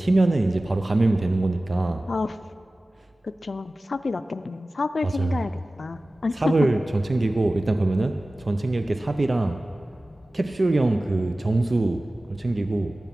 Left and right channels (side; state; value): both; normal; correlation 0.97